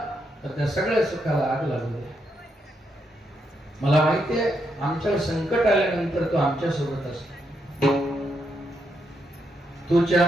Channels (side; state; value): both; normal; correlation 0.80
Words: तर त्या सगळ्या सुखाला आग लागू दे. मला माहितीये आमच्यावर संकट आल्यानंतर तो आमच्या सोबत असतो. तुझे